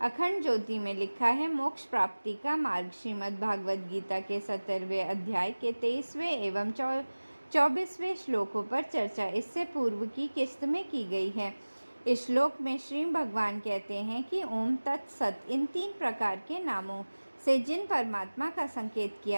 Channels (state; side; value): inverted; both; correlation -1.00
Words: अखंड ज्योति में लिखा है मोक्ष प्राप्ति का मार्ग। श्रीमद् भागवत गीता के 17वें अध्याय के 23वें एवं 24वें श्लोकों पर चर्चा इससे पूर्व की किस्त में की गई है। इस श्लोक में श्री भगवान कहते हैं कि ओम तत्सत इन 3 प्रकार के नामों से जिन परमात्मा का संकेत